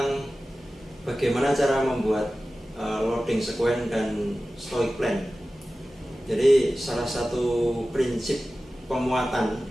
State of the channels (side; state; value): both; normal; correlation 0.95